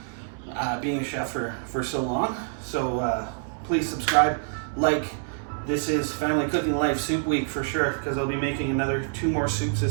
being a chef for so long. So please subscribe, like. This is Family Cooking Life Soup Week for sure, because I'll be making two more soups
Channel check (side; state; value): left; silent; digital silence